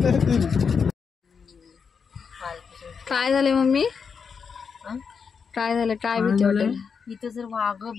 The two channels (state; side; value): quieter; right; 6.0 dB